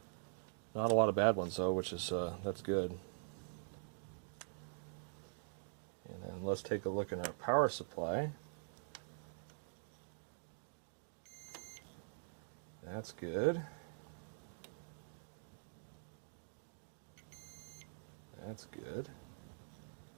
Not a lot of bad ones though, which is that's good. And then let's take a look at our power supply. That's good. That's good.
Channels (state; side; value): silent; left; digital silence